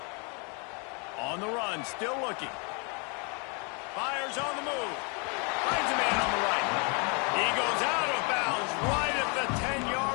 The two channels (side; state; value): right; quieter; 34.0 dB